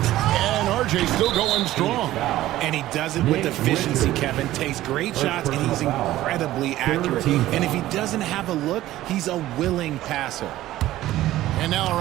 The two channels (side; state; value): left; quieter; 15.1 dB